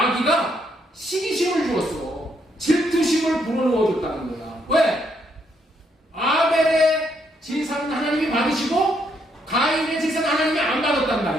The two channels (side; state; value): both; normal; correlation 0.74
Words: 시기심을 주었어. 질투심을 불어넣어줬다는 거야. 왜? 아벨의 제사는 하나님이 받으시고 가인의 제사는 하나님이 안 받았단